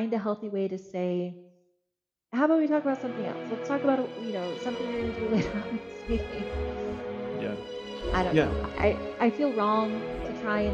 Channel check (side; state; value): both; identical; correlation 1.00